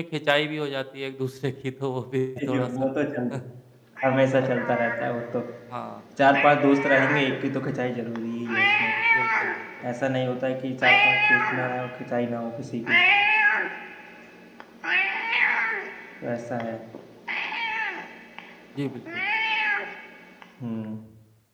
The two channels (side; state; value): both; identical; correlation 1.00